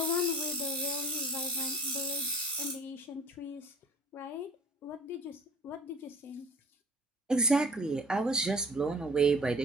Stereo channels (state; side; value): normal; both; correlation 0.47